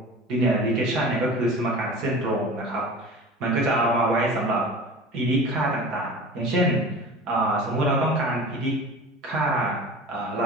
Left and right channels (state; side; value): normal; both; correlation 0.37